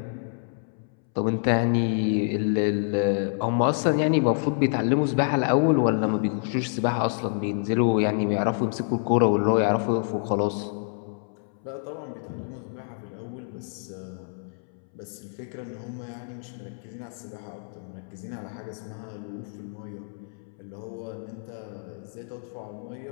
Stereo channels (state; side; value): silent; right; 60 dB below the other